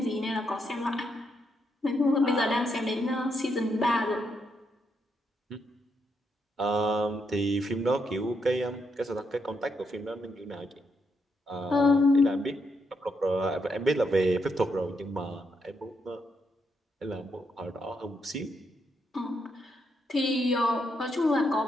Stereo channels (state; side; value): normal; both; correlation 0.79